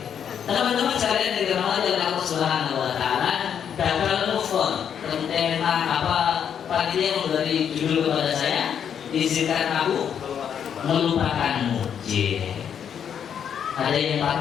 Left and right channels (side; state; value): right; quieter; 8.3 dB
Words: Teman-teman sekalian yang dirahmati oleh Allah Subhanahu Wa Taala, gagal move on. Tentang apa panitia memberi judul kepada saya, izinkan aku melupakanmu. Ada yang